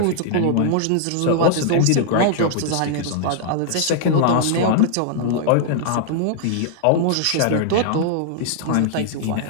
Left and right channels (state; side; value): different; both; correlation -0.01